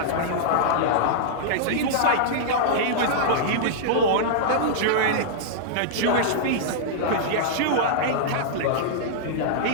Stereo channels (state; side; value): different; both; correlation -0.02